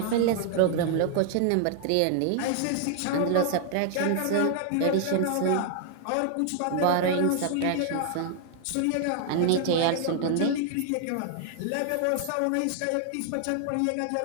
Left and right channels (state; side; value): different; both; correlation 0.00